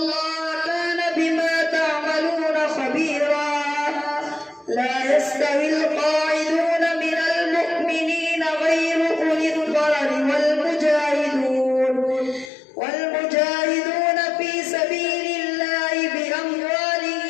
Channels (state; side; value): drops out; right; at 12.5 s